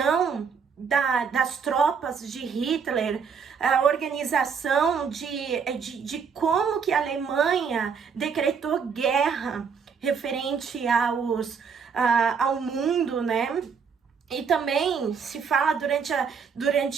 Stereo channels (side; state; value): left; quieter; 6.2 dB